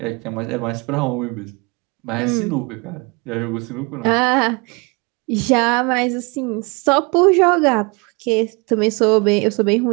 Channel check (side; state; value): left; quieter; 29.0 dB